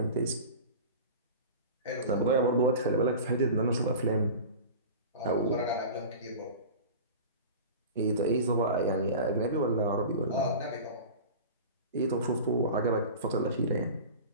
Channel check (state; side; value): inverted; both; correlation -0.34